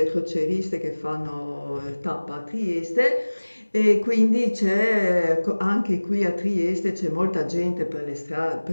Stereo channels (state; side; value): inverted; both; correlation -1.00